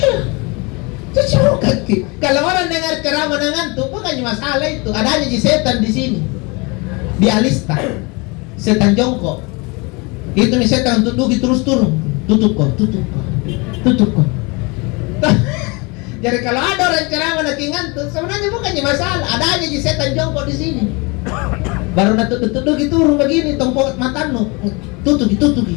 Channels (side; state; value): right; quieter; 28.1 dB